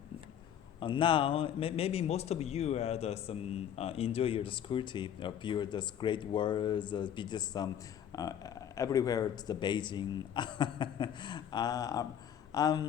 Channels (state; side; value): quieter; right; 9.4 dB